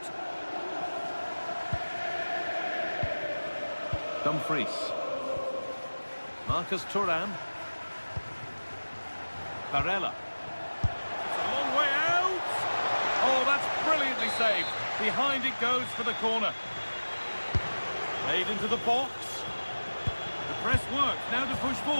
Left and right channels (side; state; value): both; inverted; correlation -1.00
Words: Dumfries. Marcus Thuram. Barella. It's a long way out. Oh, that's brilliantly saved. Behind it goes for the corner. Played into the box. The press works. Now to push